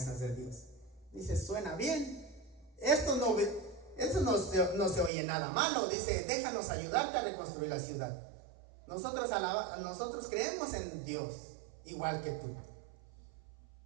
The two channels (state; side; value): drops out; left; at 5.1 s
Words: de Dios? Dice, suena bien. Esto no se oye nada malo. Dice, déjanos ayudarte a reconstruir la ciudad. Nosotros creemos en Dios, igual que tú.